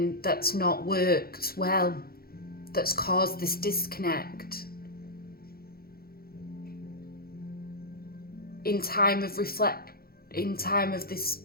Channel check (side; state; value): right; late; 0.44 ms